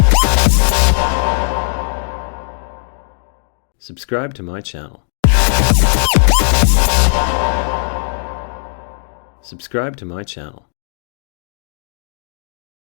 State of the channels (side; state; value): right; silent; 64 dB below the other